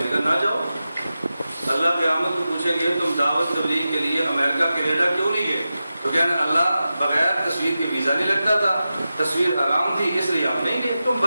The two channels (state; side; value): inverted; both; correlation -0.92